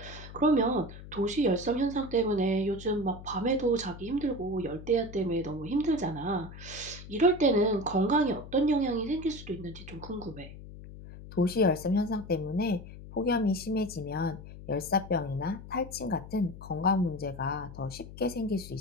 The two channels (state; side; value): noise; left; hum, 14 dB below the sound